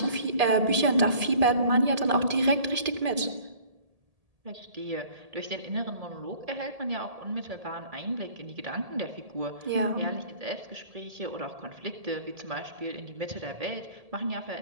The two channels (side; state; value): left; late; 1.7 ms